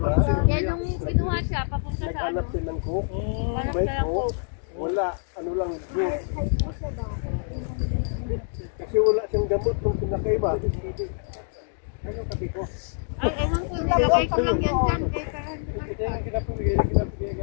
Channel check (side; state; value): right; silent; digital silence